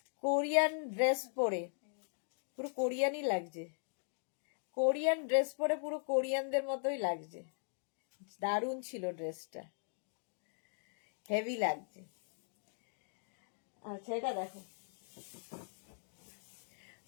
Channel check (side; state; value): right; silent; digital silence